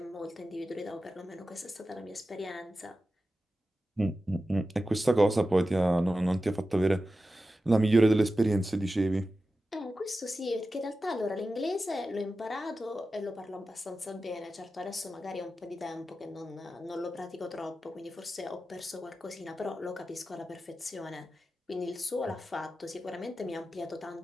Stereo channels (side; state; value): both; normal; correlation 0.93